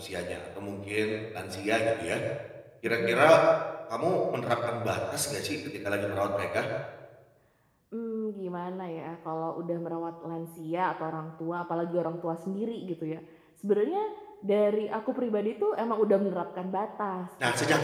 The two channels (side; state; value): both; identical; correlation 1.00